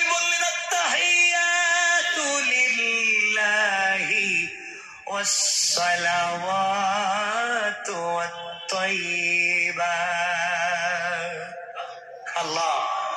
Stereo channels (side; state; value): both; identical; correlation 1.00